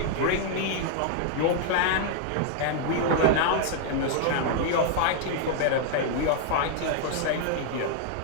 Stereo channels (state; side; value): different; both; correlation 0.00